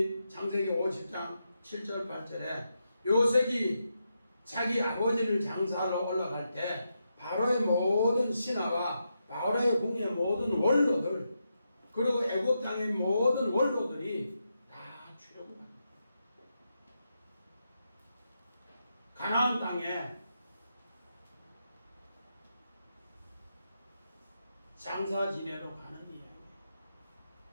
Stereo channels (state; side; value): inverted; both; correlation -0.85